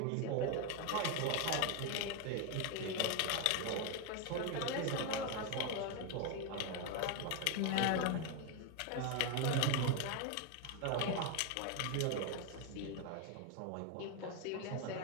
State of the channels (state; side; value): different; both; correlation 0.01